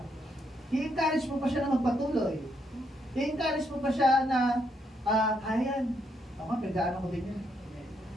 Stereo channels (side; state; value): both; normal; correlation 0.76